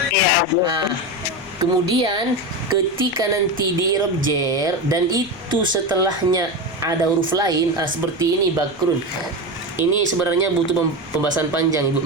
Iya Abun. Nah, kemudian ketika nanti di i'rab jar dan itu setelahnya ada huruf lain seperti ini Bakrun. Ini sebenarnya butuh pembahasan panjang Ibu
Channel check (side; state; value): left; noise; rumble, 25 dB below the sound